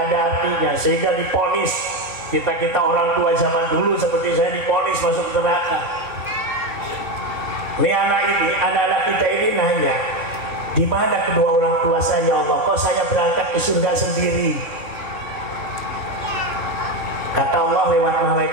ada artinya, sehingga diponis kita orang tua zaman dulu seperti saya diponis masuk neraka. Nih anak-anak kita ini nanya, di mana kedua orang tua saya ya Allah? Kok saya berangkat ke surga sendiri? Kata Allah lewat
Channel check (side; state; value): left; late; 3.9 ms